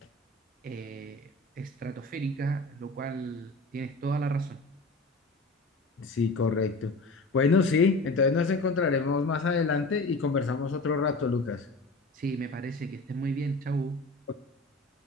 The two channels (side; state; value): right; quieter; 3.1 dB